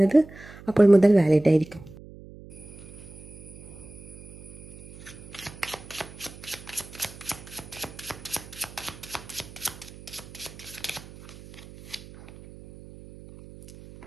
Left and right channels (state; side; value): noise; right; hum, 17 dB below the sound